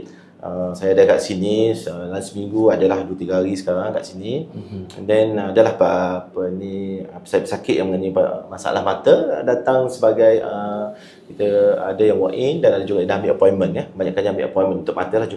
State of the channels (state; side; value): identical; both; correlation 1.00